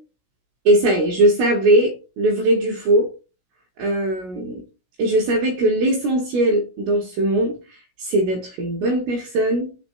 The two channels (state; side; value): late; left; 16 ms